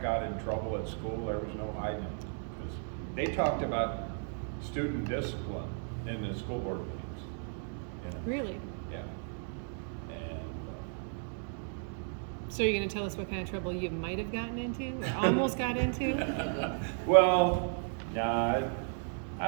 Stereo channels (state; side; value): silent; left; 55 dB below the other